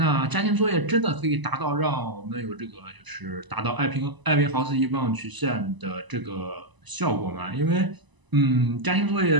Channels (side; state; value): left; late; 1.0 ms